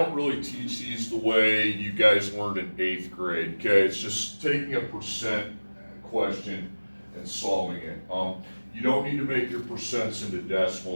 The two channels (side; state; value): both; inverted; correlation -1.00